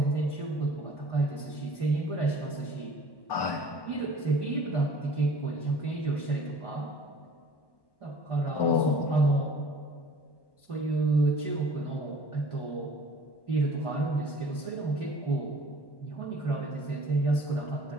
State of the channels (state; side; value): late; right; 1.1 ms